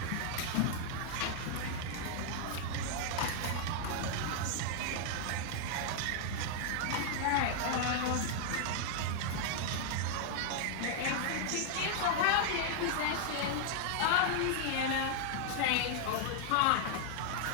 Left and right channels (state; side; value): different; both; correlation -0.01